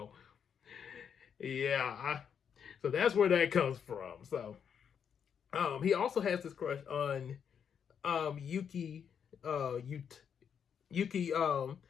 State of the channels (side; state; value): right; quieter; 7.6 dB